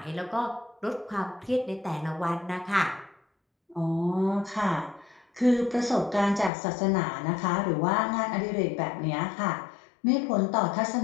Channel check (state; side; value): drops out; right; at 6.5 s